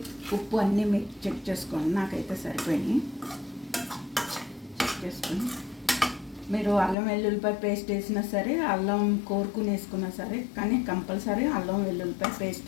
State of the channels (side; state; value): right; drops out; at 7.0 s